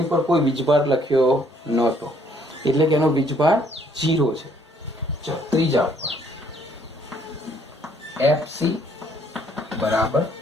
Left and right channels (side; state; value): both; normal; correlation 0.65